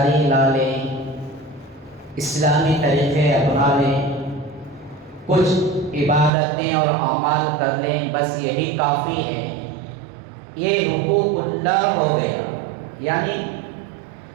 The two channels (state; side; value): drops out; left; at 6.3 s